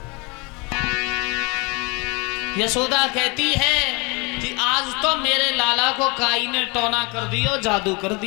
यशोदा कहती है कि आज तो मेरे लाला को काई ने टोना कर दियो, जादू कर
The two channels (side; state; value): right; quieter; 28.8 dB